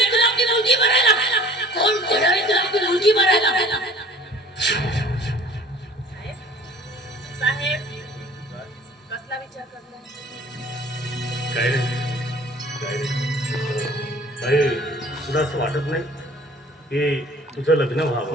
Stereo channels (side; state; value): both; normal; correlation 0.48